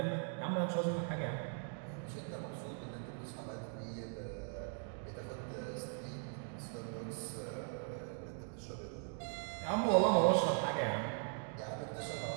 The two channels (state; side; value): silent; left; 51 dB below the other